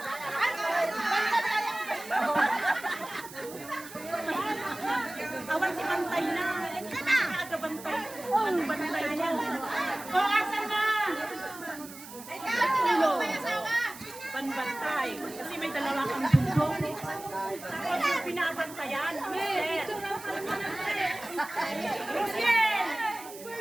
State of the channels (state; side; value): noise; right; hiss, 15 dB below the sound